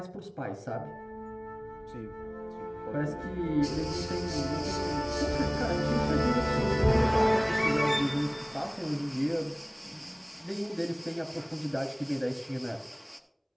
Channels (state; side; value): identical; both; correlation 1.00